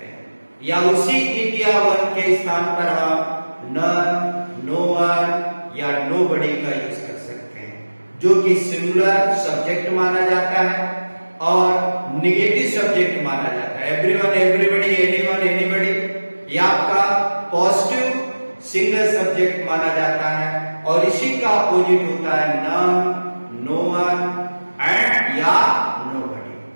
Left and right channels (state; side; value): inverted; both; correlation -1.00